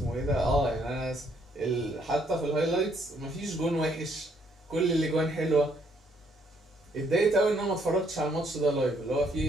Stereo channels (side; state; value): both; normal; correlation 0.69